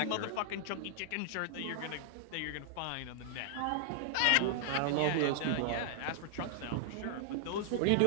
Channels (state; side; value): different; both; correlation -0.01